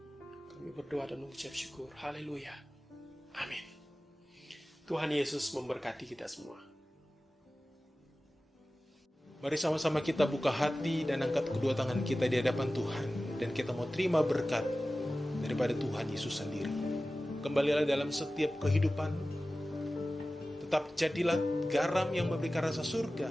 kami berdoa dan mengucap syukur. Haleluya. Amin. Tuhan Yesus memberkati kita semua. Mari sama-sama kita buka hati dan angkat kedua tangan kita di hadapan Tuhan. Dan kita mau terima berkat daripada Tuhan Yesus sendiri. Kembalilah dalam setiap kehidupan. Tetap jadilah garam yang memberikan rasa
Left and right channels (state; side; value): normal; both; correlation 0.96